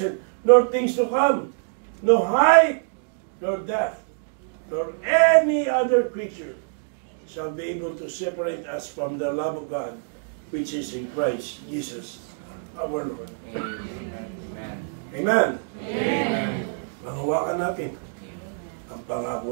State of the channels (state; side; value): silent; left; digital silence